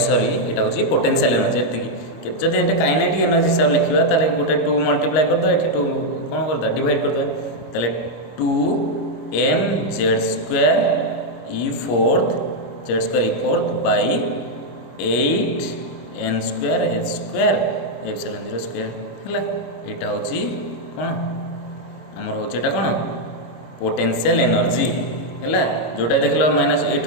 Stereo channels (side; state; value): right; late; 26 ms